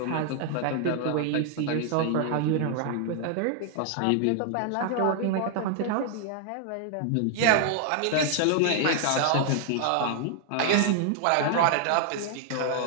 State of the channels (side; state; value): both; different; correlation 0.00